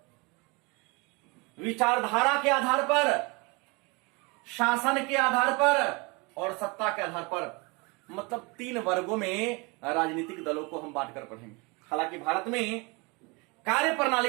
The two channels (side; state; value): left; quieter; 28.1 dB